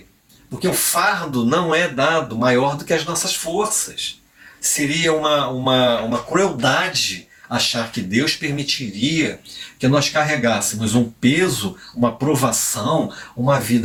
Porque o fardo não é dado maior do que as nossas forças. Seria uma crueldade achar que Deus permitiria que nós carregássemos um peso, uma provação, uma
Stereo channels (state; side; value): identical; both; correlation 1.00